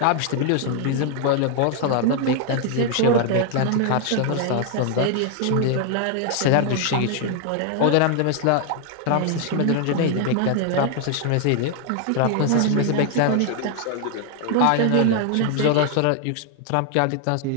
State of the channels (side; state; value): both; different; correlation 0.00